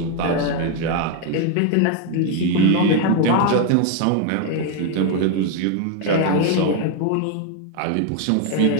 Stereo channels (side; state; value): both; different; correlation 0.01